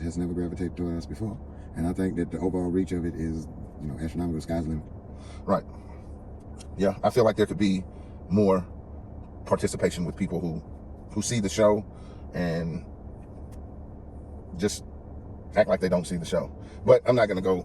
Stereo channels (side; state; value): both; identical; correlation 1.00